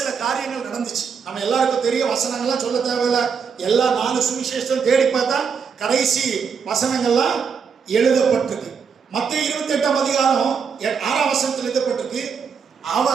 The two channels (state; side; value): quieter; left; 6.3 dB